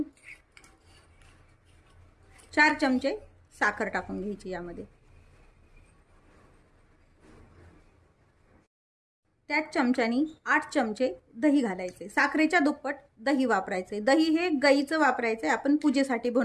4 चमचे साखर टाकून घ्यायची यामध्ये। त्याच चमच्यानी 8 चमचे दही घालायचे। साखरेच्या दुप्पट दही वापरायचे। दही हे गाईचं वापरायचे, आपण पूजेसाठी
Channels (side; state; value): both; identical; correlation 1.00